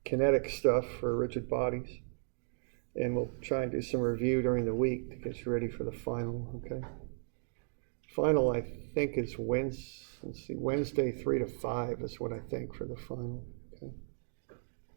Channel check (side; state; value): left; silent; digital silence